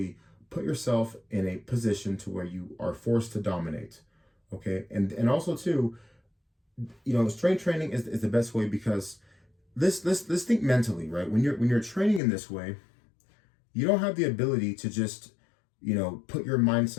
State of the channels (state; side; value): drops out; right; at 12.2 s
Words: put yourself in a position to where you are forced to dominate, okay? And also too, strength training is the best way because let's think mentally, right? When you're training in this way, you don't have the ability to just, put your mind